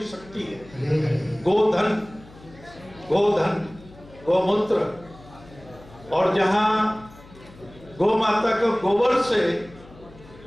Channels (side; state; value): left; noise; hum, 22 dB below the sound